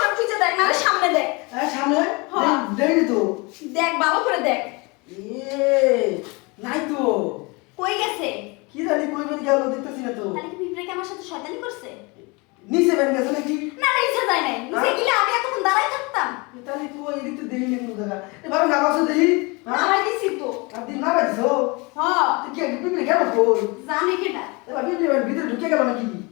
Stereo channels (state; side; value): quieter; right; 27.5 dB